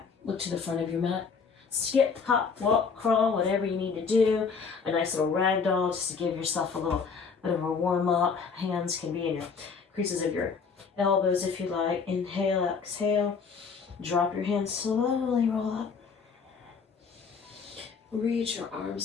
look to the front of your mat. Skip, hop, walk, crawl, whatever you need to do. A nice little ragdoll just to give yourself a little bit of a warm up. Hands can be in your creases of your elbows if you like. Inhale, exhale. Drop your hands, slowly roll up. Reach your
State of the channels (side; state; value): right; quieter; 5.5 dB